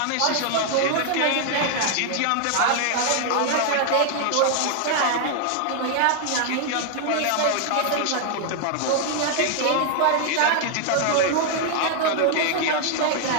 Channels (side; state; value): both; different; correlation 0.00